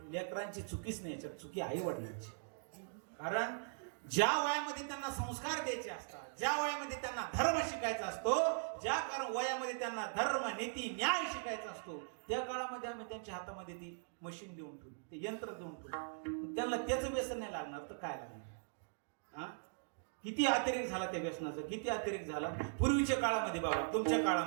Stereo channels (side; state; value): left; silent; digital silence